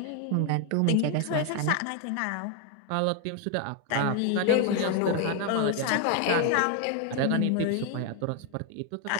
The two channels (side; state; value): both; different; correlation 0.01